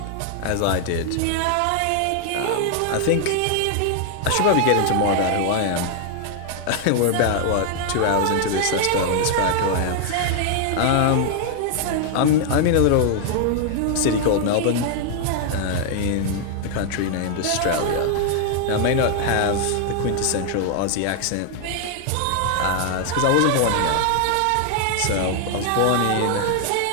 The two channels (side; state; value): both; different; correlation 0.00